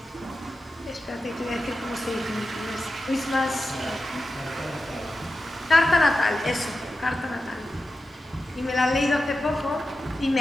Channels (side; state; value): both; normal; correlation 0.91